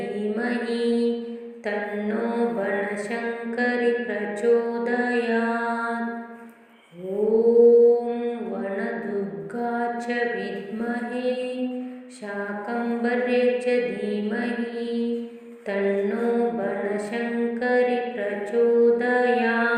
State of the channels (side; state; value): both; identical; correlation 1.00